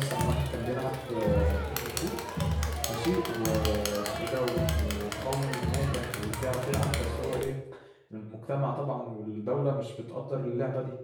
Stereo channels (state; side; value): identical; both; correlation 1.00